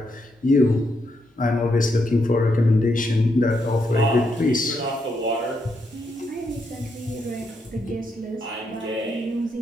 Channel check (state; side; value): normal; both; correlation 0.79